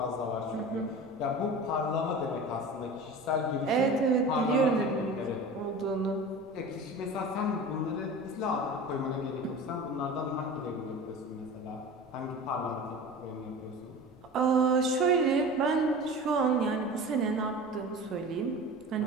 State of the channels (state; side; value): noise; left; rumble, 27 dB below the sound